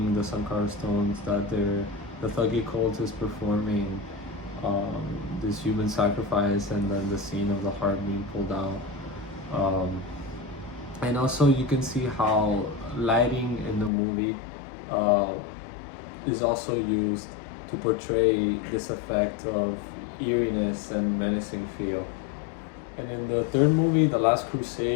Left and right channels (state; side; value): drops out; right; at 13.9 s